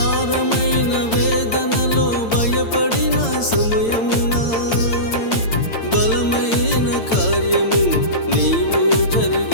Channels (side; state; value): right; late; 8.9 ms